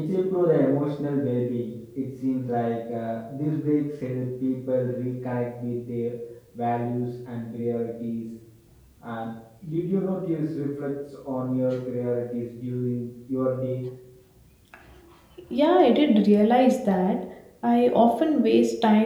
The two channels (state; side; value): identical; both; correlation 1.00